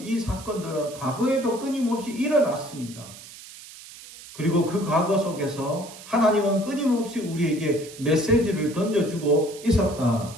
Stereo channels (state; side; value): noise; right; hiss, 17 dB below the sound